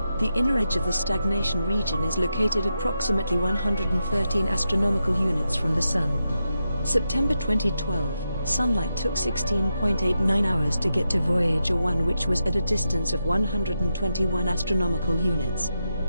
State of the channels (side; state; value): both; inverted; correlation -0.86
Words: The inner edge of the stagnation region is located approximately 113 astronomical units from the Sun. September 2012, Sunlight took 16.89 hours to get to Voyager 1, which was at a distance of 121 astronomical units.